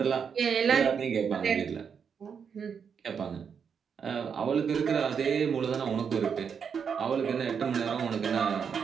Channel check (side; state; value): left; quieter; 6.8 dB